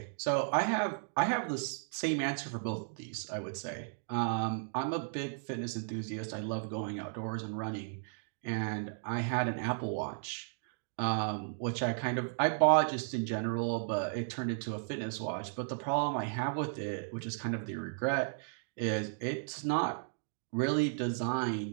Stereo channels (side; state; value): left; silent; digital silence